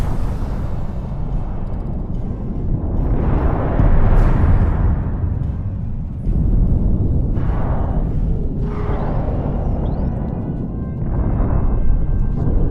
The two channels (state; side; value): identical; both; correlation 1.00